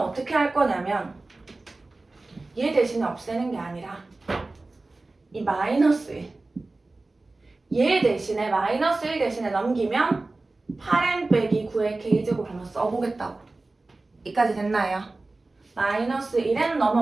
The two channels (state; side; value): quieter; left; 3.2 dB